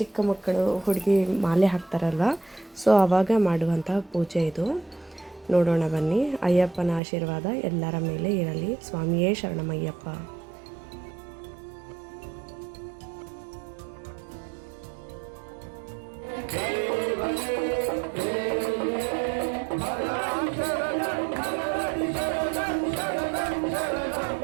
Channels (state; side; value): drops out; left; at 7.0 s